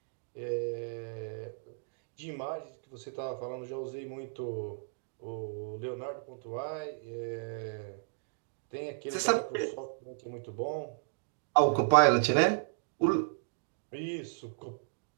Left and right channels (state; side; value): silent; left; digital silence